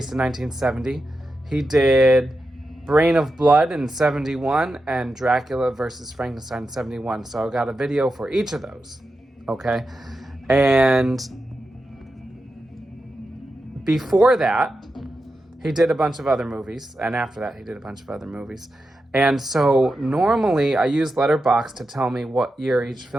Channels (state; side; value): normal; both; correlation 0.89